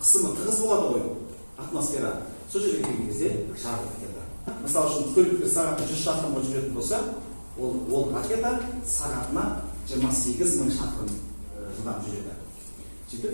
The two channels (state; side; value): inverted; both; correlation -1.00